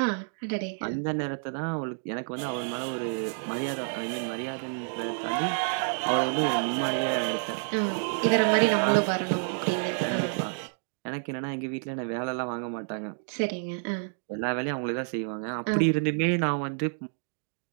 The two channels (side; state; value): left; silent; digital silence